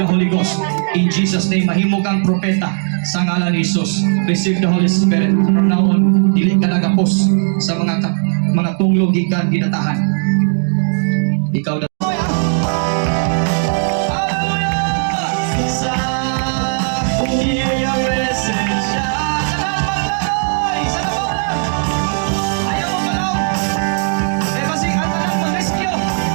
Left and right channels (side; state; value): left; silent; 64 dB below the other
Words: Holy Ghost. In Jesus' name, mahimo kang propeta sa ngalan ni Jesus. Receive the Holy Spirit. From now on, dili ka nagapos sa mga tunglog gikan ginatahan. Ikaw na.